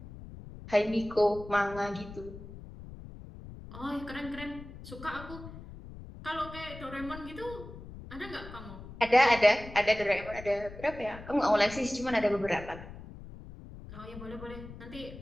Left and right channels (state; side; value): noise; left; rumble, 14 dB below the sound